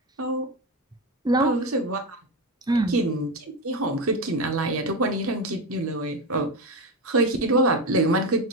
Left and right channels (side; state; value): both; normal; correlation 0.16